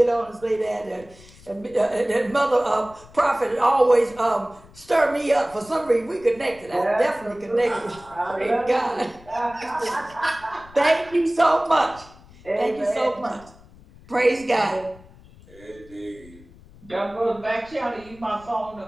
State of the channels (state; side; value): noise; left; rumble, 23 dB below the sound